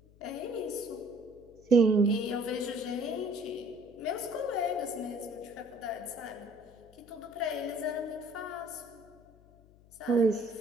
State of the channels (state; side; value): noise; left; hum, 25 dB below the sound